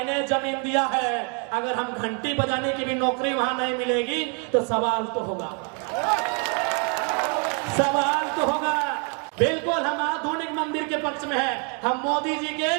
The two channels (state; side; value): quieter; left; 38.0 dB